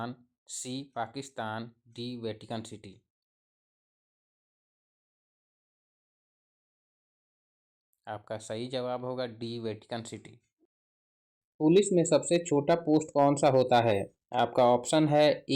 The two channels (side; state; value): both; identical; correlation 1.00